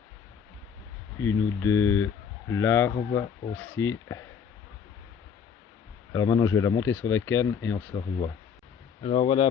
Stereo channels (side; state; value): right; quieter; 7.1 dB